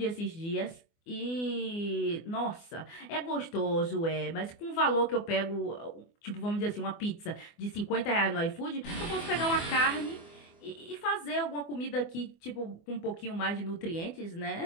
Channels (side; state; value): right; late; 24 ms